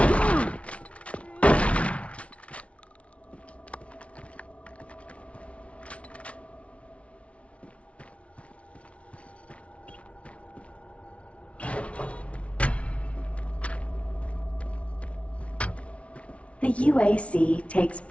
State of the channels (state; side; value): late; right; 0.063 ms